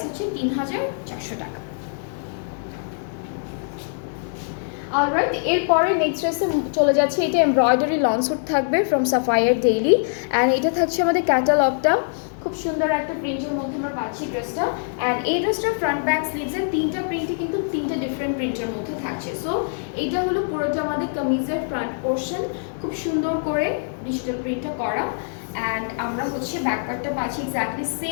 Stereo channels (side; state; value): right; silent; 63 dB below the other